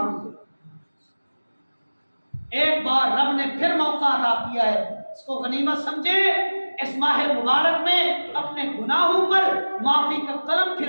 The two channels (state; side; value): inverted; both; correlation -1.00